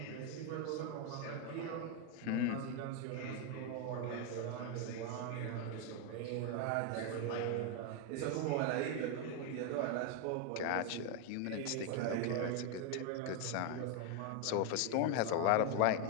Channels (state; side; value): different; both; correlation 0.01